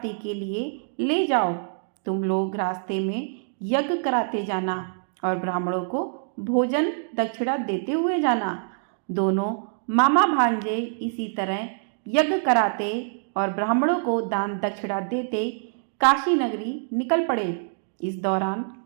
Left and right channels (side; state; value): left; silent; digital silence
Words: के लिए ले जाओ। तुम लोग रास्ते में यज्ञ कराते जाना और ब्राह्मणों को भोजन दक्षिणा देते हुए जाना। दोनों मामा भांजे इसी तरह यज्ञ कराते और ब्राह्मणों को दान दक्षिणा देते काशी नगरी निकल पड़े। इस दौरान